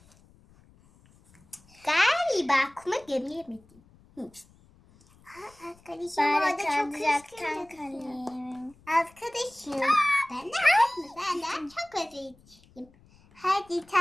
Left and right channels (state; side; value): noise; left; rumble, 28 dB below the sound